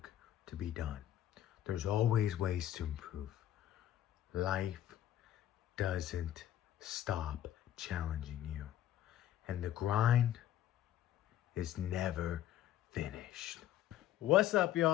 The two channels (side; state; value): right; quieter; 12.0 dB